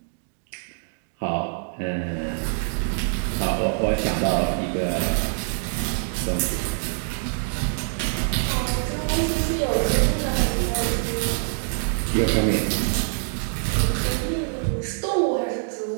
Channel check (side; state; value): left; silent; digital silence